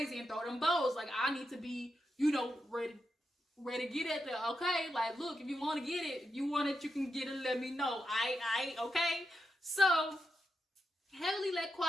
and throw them bows. I need to be, ready to get at there, okay? Look, if you want to get it, if you want it, you can get it, let me know. I, okay? So, Heavenly let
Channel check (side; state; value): both; normal; correlation 0.86